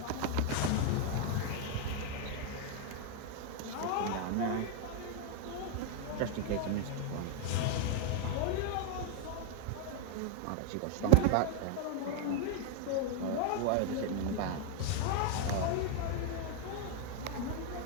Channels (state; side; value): different; both; correlation 0.00